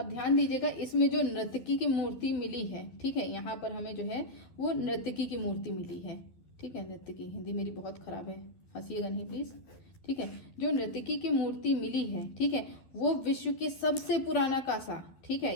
ध्यान दीजिएगा, इसमें जो नर्तकी की मूर्ति मिली है, ठीक है, यहाँ पर हमें जो है वो नर्तकी की मूर्ति मिली है, ठीक है। नर्तकी, हिंदी मेरी बहुत खराब है, हंसिएगा नहीं प्लीज, ठीक है। जो नर्तकी की मूर्ति मिली है, ठीक है, वो विश्व के सबसे पुराना कांसा, ठीक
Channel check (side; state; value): right; late; 11 ms